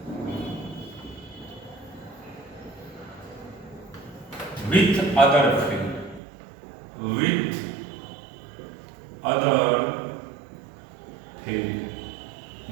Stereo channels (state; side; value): drops out; left; at 6.2 s